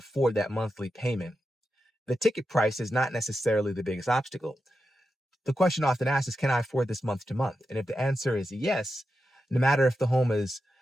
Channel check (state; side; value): normal; both; correlation 0.89